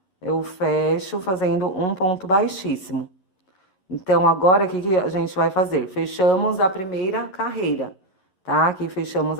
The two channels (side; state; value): right; late; 11 ms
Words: eu fecho fazendo um ponto baixíssimo. Então, agora, o que a gente vai fazer? Fechamos a primeira carreira, tá? Aqui fechamos